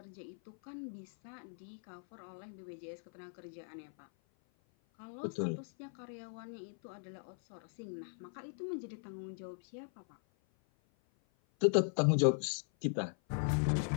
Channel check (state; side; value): silent; right; 52 dB below the other